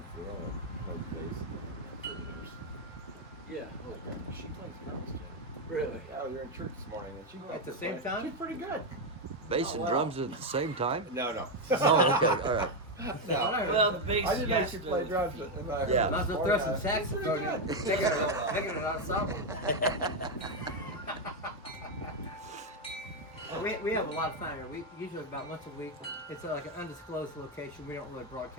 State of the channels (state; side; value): normal; both; correlation 0.05